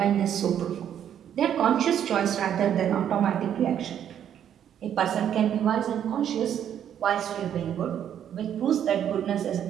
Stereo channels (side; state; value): left; quieter; 9.6 dB